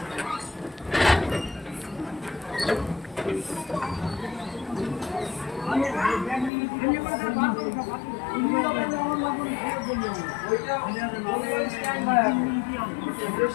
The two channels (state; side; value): drops out; right; at 6.5 s